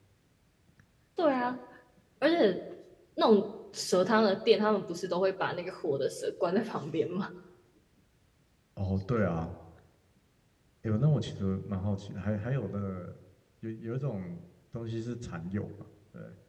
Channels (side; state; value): both; identical; correlation 1.00